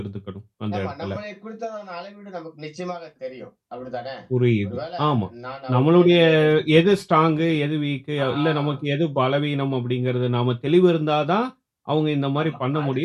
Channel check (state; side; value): identical; both; correlation 1.00